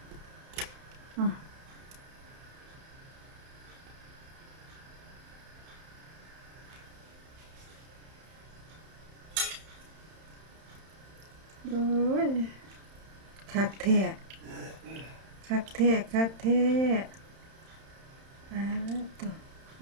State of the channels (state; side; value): late; left; 31 ms